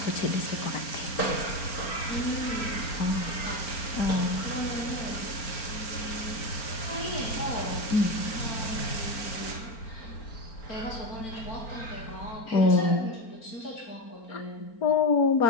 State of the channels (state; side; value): late; right; 4.4 ms